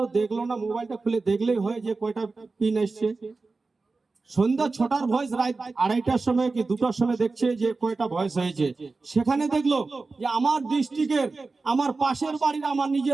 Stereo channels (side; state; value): left; quieter; 3.8 dB